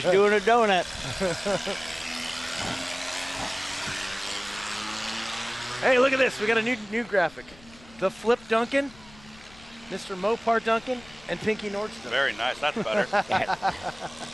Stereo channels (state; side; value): noise; left; rumble, 23 dB below the sound